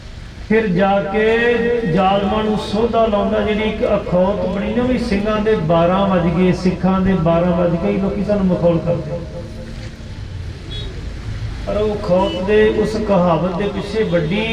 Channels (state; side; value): identical; both; correlation 1.00